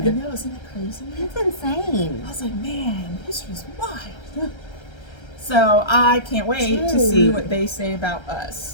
know, isn't that crazy? It's insane. I was like, man, history's wild. So I can't wait to see Dude. what they say about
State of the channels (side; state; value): right; late; 1.3 ms